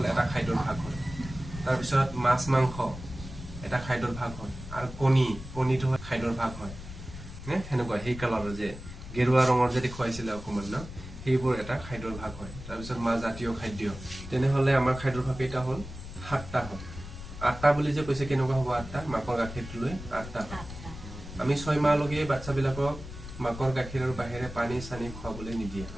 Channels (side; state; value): left; noise; rumble, 12 dB below the sound